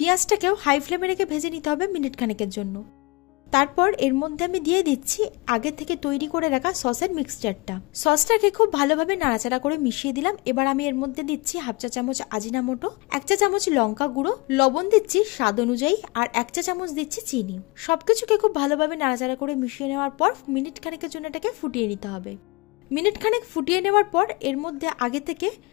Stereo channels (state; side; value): quieter; right; 25.9 dB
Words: হাই ফ্লেমে রেখে ভেজে নিতে হবে মিনিট খানেকের জন্য। তারপর এর মধ্যে আমি দিয়ে দিচ্ছি আগে থেকে তৈরি করে রাখা সসের মিক্সচারটা। সসটাকে খুব ভালোভাবে নাড়াচাড়া করে মিশিয়ে দিলাম। এবার আমি এর মধ্যে দিচ্ছি হাফ চা চামচ আজিনামোটো, 1 চা চামচ লঙ্কা গুঁড়ো, লবণ দিচ্ছি স্বাদ অনুযায়ী, আর 1 চা চামচ দিচ্ছি চিনি। সবকিছুকে খুব ভালোভাবে নাড়াচাড়া করে মিশিয়ে নেওয়ার পর মিনিট খানেকের জন্য এটাকে ফুটিয়ে নিতে হবে। মিনিট খানেক ফুটিয়ে নেওয়ার পর এর মধ্যে আগে থেকে